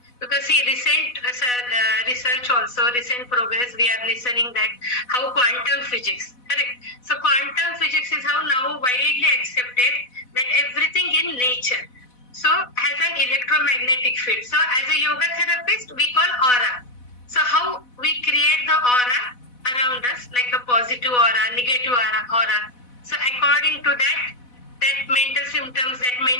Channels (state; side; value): late; right; 4.1 ms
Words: Because see, recent research also, recent progress, we are listening that how quantum physics, correct? So quantum physics is how now widely accepted that everything in nature so has an electromagnetic field. So as a yoga therapist, we call aura. So how we create the aura around us, like a positive aura, negative aura. So according to that mental symptoms, that